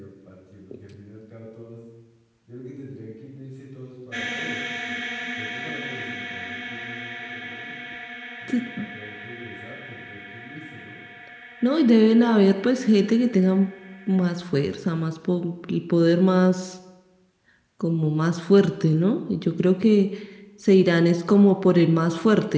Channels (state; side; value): identical; both; correlation 1.00